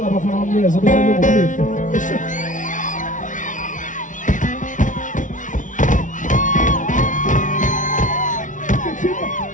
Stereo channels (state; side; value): late; right; 0.37 ms